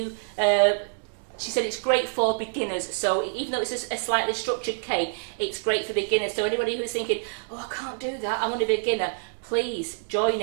She said it's great for beginners, so even though it's a slightly structured cake, it's great for beginners. So anybody who's thinking, oh, I can't do that, I'm only a beginner, please join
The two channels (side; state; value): left; silent; digital silence